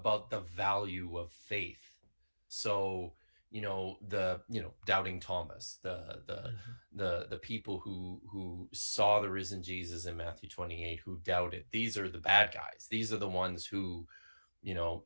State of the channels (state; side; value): inverted; both; correlation -1.00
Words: the value of faith. So, doubting Thomas, the people who saw the risen Jesus in Matthew 28, who doubted, these are the bad guys. These are the ones who,